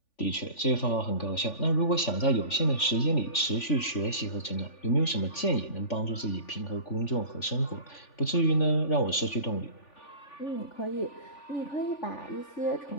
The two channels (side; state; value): right; late; 3.4 ms